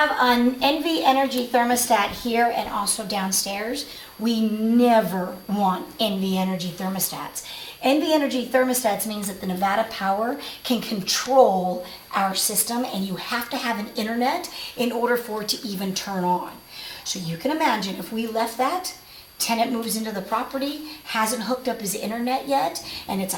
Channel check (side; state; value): both; identical; correlation 1.00